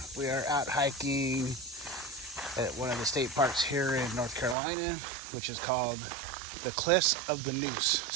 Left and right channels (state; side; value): drops out; left; at 4.5 s